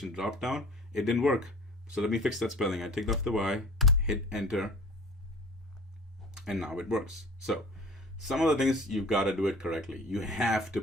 drop down, it didn't work. So let me fix that spelling. I take off the Y, hit enter, and now it works. So some of the things, you've got to do it correctly. You have to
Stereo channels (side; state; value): both; normal; correlation 0.44